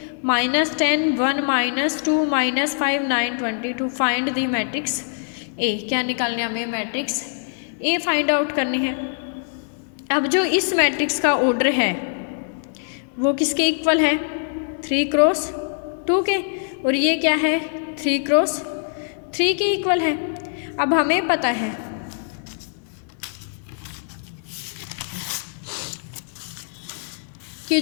-10 1 -2 -5 9 22। Find the matrix A। क्या निकालने हमें, मैट्रिक्स A फाइंड आउट करनी है। अब जो इस मैट्रिक्स का ऑर्डर है वो किसके इक्वल है, 3 क्रॉस 2 के, और ये क्या है 3 क्रॉस 3 के इक्वल है। अब हमें पता है कि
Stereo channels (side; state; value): right; silent; 62 dB below the other